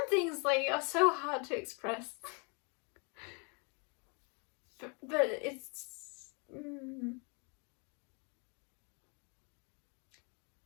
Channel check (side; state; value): right; quieter; 34.9 dB